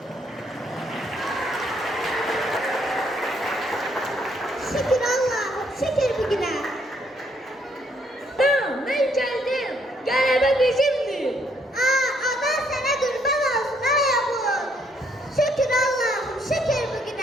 Şükür Allah'ım, şükür bugüne. Tamam, ben geldim. Qələbə bizimdir. Adan sana kurban olsun ayağım. Şükür Allah'ım, şükür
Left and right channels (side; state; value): both; normal; correlation 0.70